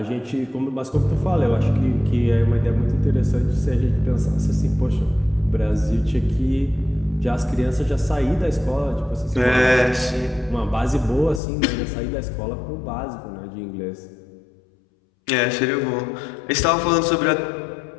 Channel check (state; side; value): drops out; right; at 11.4 s